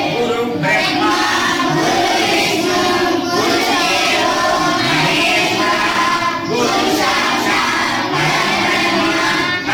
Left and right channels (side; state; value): both; identical; correlation 1.00